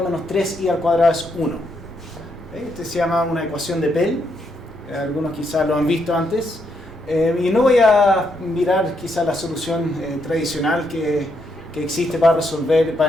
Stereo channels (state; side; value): normal; both; correlation 0.77